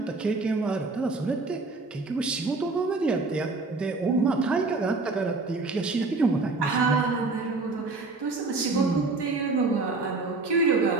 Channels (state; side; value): quieter; left; 3.6 dB